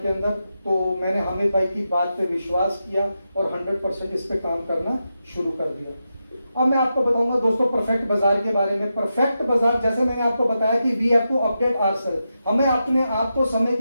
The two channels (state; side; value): inverted; both; correlation -0.88